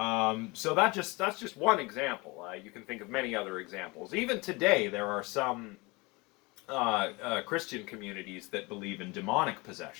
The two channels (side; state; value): right; quieter; 25.4 dB